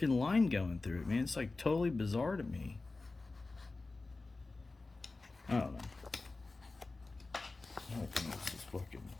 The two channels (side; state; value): right; quieter; 3.5 dB